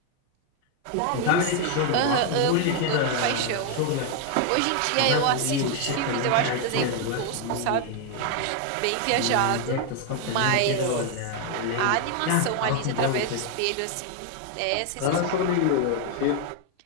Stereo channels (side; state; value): both; different; correlation 0.01